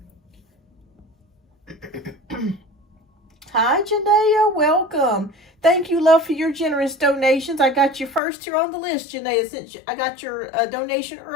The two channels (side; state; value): right; drops out; at 8.2 s